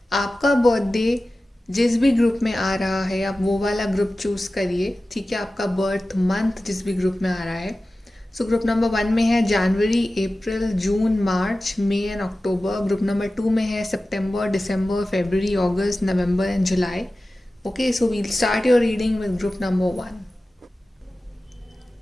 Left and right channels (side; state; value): both; normal; correlation 0.95